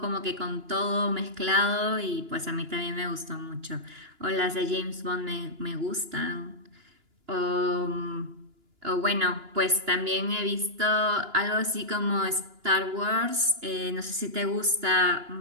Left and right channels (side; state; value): left; late; 2.9 ms